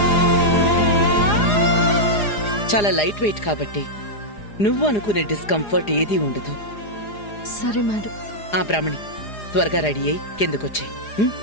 చాలా లైట్ వెయిట్ కాబట్టి నువ్వు అనుకునే డిస్కంఫర్ట్ ఏదీ ఉండదు. సరే మేడం. ఆ బ్రాహ్మణి, త్వరగా రెడీ అయ్యి కిందకొచ్చాయి.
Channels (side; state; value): right; late; 4.9 ms